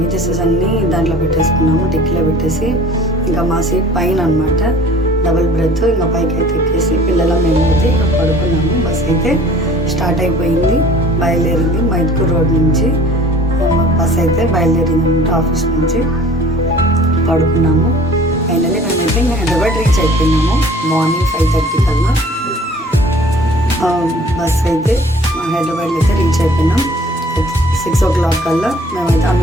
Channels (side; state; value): both; normal; correlation 0.50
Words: అన్నీ దాంట్లో పెట్టేసుకున్నాము, డిక్కీలో పెట్టేసి. ఇంకా మా సీట్ పైన అనమాట, డబుల్ బ్రెత్. ఇంకా పైకి అయితే ఎక్కేసి పిల్లల మేము అయితే ఇంకా పడుకున్నాము. బస్ అయితే స్టార్ట్ అయిపోయింది, బయలుదేరింది. మైట్కూర్ రోడ్ నుంచి బస్ అయితే బయలుదేరింది అనమాట, ఆఫీస్ నుంచి. పడుకున్నాము. ఫైనల్లీ మేమైతే ఇంకా హైదరాబాద్ రీచ్ అయిపోయినాము. మార్నింగ్ 5:30 కల్లా బస్ అయితే హైదరాబాద్లో అయితే రీచ్ అయిపోయినాం. 6 o'clock కల్లా మేమైతే